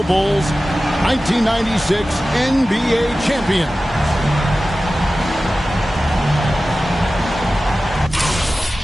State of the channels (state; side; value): normal; both; correlation 0.95